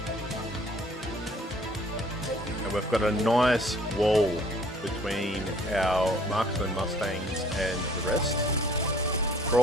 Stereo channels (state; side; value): normal; both; correlation 0.56